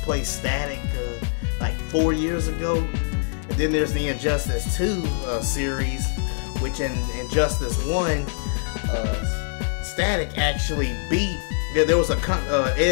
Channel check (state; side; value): silent; right; 61 dB below the other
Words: play Static like 4 years ago? And then there's the Injustice 2 series, which in Injustice 1, Static actually beat. There was